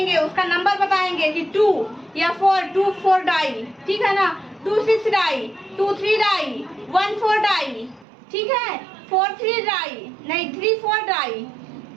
उसका नंबर बताएंगे कि 2 या 4 डाई, ठीक है ना। 2 6 डाई, 2 3 डाई, 1 4 डाई, ठीक है। 4 3 डाई, नहीं 3 4 डाई,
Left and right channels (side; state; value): left; drops out; at 8.1 s